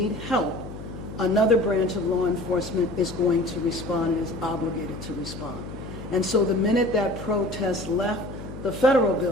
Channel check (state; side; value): noise; left; hum, 11 dB below the sound